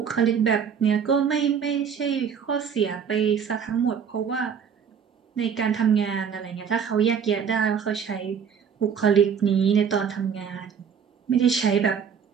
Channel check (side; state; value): left; quieter; 7.2 dB